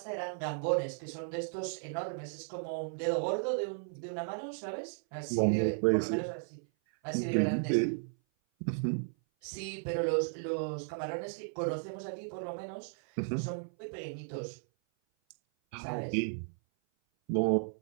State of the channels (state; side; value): silent; left; 55 dB below the other